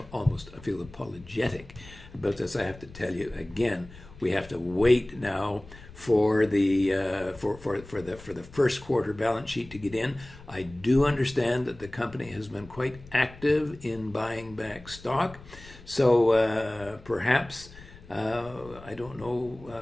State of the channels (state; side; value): noise; left; rumble, 19 dB below the sound